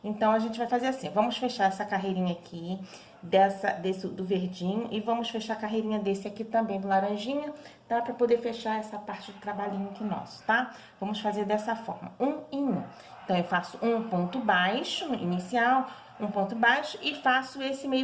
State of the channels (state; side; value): identical; both; correlation 1.00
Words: Então, a gente vai fazer assim, vamos fechar essa carreirinha aqui, do verdinho, e vamos fechar a carreirinha desse aqui também, do laranjinha, tá? Pra poder fechar essa parte do trabalhinho aqui nosso, tá? Vamos fazer dessa forma, um em um. Então, eu faço um ponto baixo, inicial, um ponto baixo, e faço esse